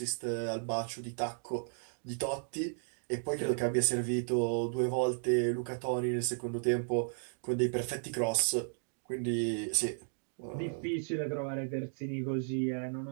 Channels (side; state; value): left; silent; digital silence